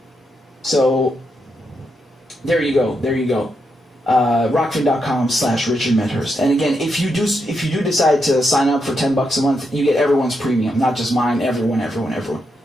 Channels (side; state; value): both; normal; correlation 0.82